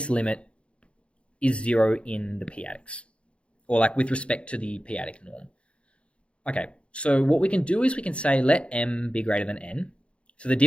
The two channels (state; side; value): late; right; 0.059 ms